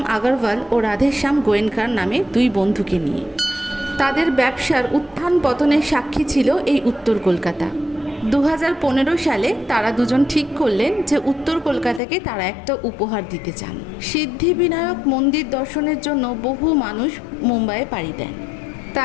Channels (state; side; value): drops out; right; at 12.0 s